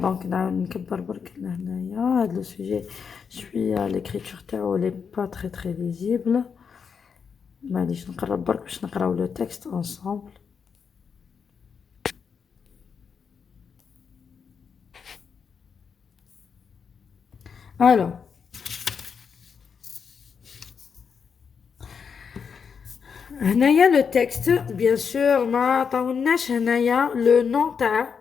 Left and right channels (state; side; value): quieter; right; 6.3 dB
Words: نكبر برك لهنايا هذا le sujet. Je suis à l'écriture تاعو elle est pas très visible. معليش نقرب برك باش نقراو le texte ensemble. Alors, هنايا le texte bien sûr ما عطاولناش هنايا le nom تاع